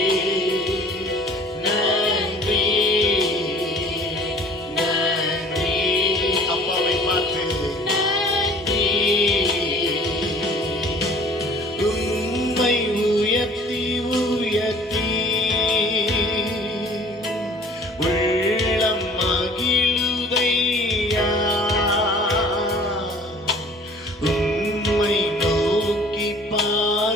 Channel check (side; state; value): both; normal; correlation 0.51